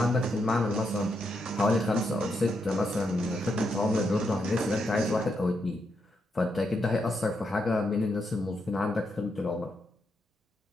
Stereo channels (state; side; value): normal; both; correlation 0.81